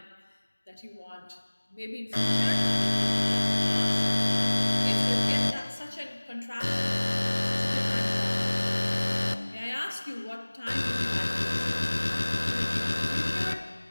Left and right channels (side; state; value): both; inverted; correlation -1.00